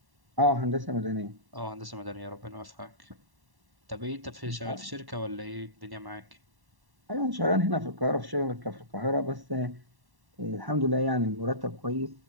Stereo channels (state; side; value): late; left; 1.1 ms